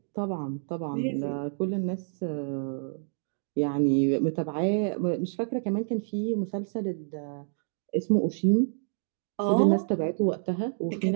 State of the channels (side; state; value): left; silent; digital silence